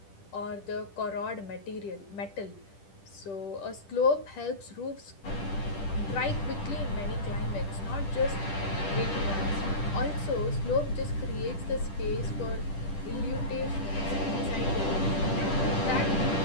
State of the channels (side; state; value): right; late; 10 ms